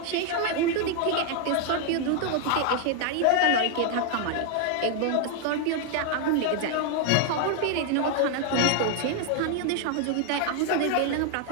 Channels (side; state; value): both; different; correlation 0.00